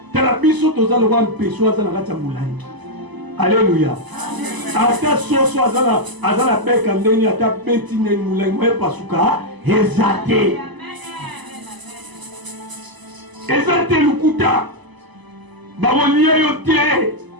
tala biso tozalo ba mpeso azana kacha mulangi alléluia ata soso azala beka ndeni ata beti neni mulangi moye pasuka ezate ezate lukuta bakolia yo te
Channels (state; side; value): late; left; 1.0 ms